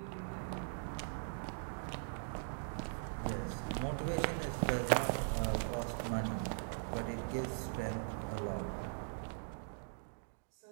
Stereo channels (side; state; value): left; silent; digital silence